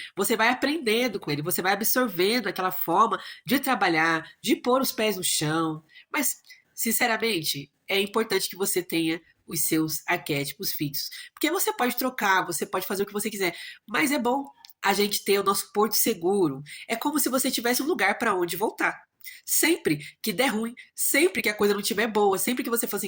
você vai aprendendo com ele, você vai absorvendo aquela forma de trabalhar, de pôr os pés no chão. Mas, sinceramente, é importante que você tenha os seus arquétipos fixos. Porque você pode trocar, você pode fazer o que você quiser, mas é bom a gente ter o nosso porto seguro. É como se você tivesse um lugar para onde voltar. Sempre que der ruim, sempre que a coisa não estiver boa, sempre que você for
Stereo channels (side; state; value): both; identical; correlation 1.00